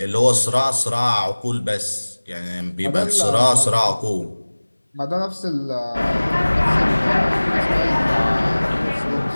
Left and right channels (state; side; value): inverted; both; correlation -1.00